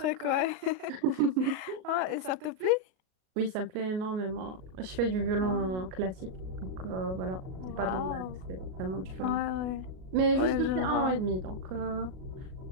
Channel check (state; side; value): late; left; 38 ms